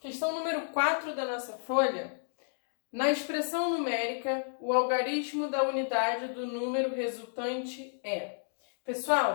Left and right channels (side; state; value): right; silent; digital silence